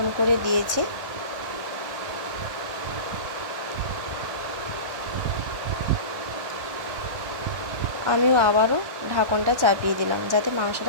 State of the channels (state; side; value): late; left; 1.4 ms